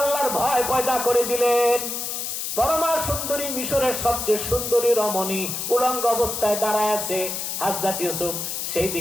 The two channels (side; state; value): left; noise; hiss, 4 dB below the sound